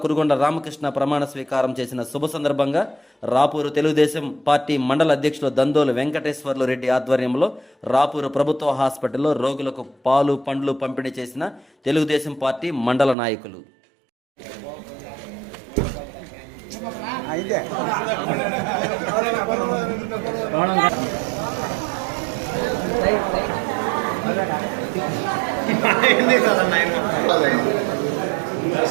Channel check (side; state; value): left; drops out; at 13.2 s